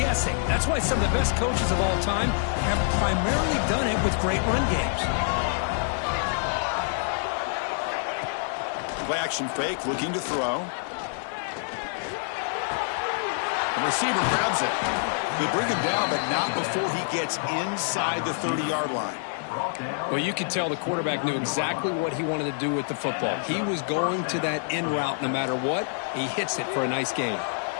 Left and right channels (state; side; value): silent; right; digital silence